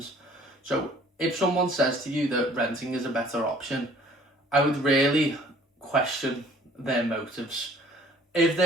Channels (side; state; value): both; normal; correlation 0.55